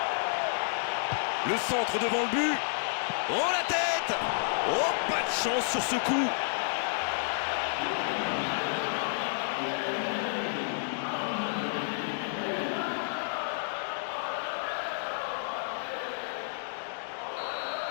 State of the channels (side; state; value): right; silent; digital silence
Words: Le centre devant le but. Oh la tête! Oh, pas de chance sur ce coup.